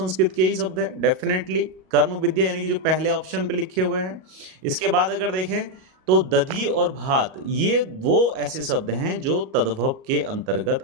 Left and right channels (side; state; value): left; late; 38 ms